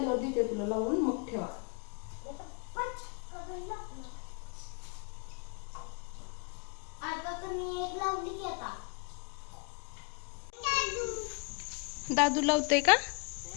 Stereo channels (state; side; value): quieter; right; 32.7 dB